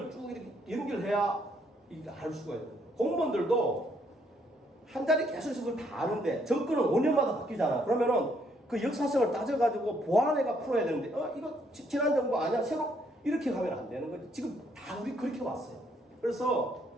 쭉 이렇게 연결해야 이게 알 수가 있는 거예요. 공무원들도 한 자리 계속 있어서 그걸 다 아는데 정권은 5년마다 바뀌잖아. 그러면은 그 역사성을 따져가지고 보완해가 풀어야 되는데 이거 지난 정부 아니야? 새로 이렇게 가면 안 되는 거지. 지금 다 우리 그렇게 왔어요. 그래서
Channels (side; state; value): both; normal; correlation 0.70